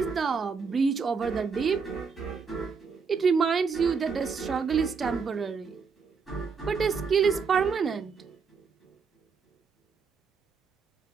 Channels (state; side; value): quieter; left; 5.4 dB